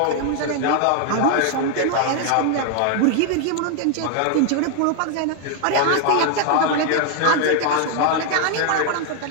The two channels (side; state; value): both; different; correlation 0.00